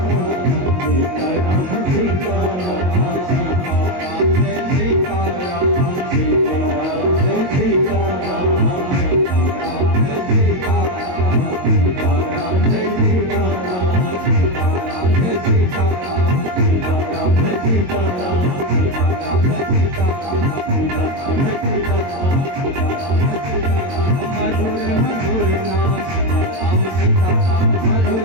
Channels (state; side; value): late; left; 22 ms